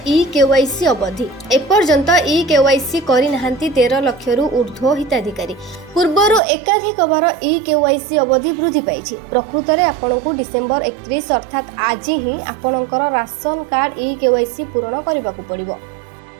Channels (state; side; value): drops out; left; at 6.4 s